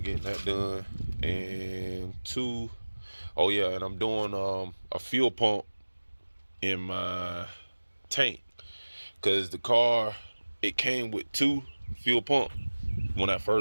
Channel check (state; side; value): inverted; both; correlation -1.00